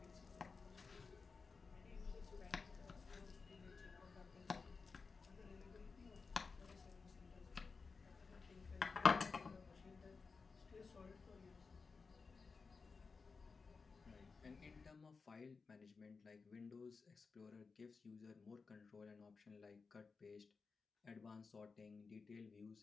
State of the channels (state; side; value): quieter; right; 4.7 dB